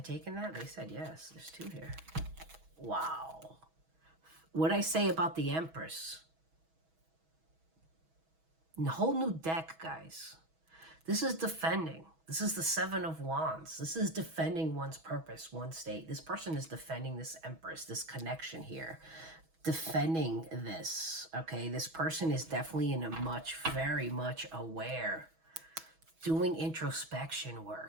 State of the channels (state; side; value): late; left; 6.2 ms